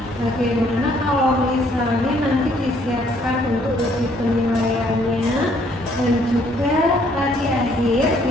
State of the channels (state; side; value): normal; both; correlation 0.65